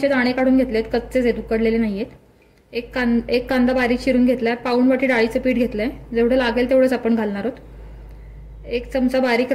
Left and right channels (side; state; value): both; identical; correlation 1.00